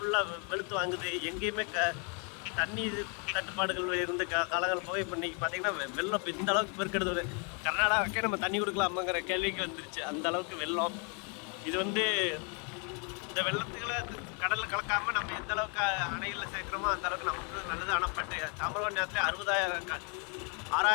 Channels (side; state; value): right; quieter; 36.6 dB